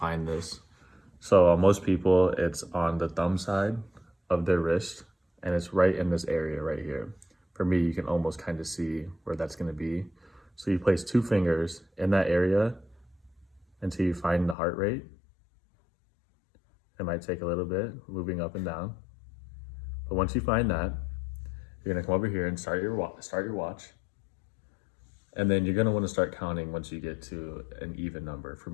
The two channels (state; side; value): drops out; right; at 14.6 s